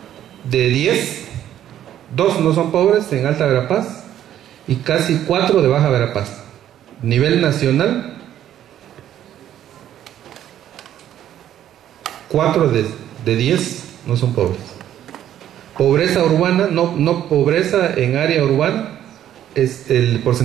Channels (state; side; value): quieter; left; 11.3 dB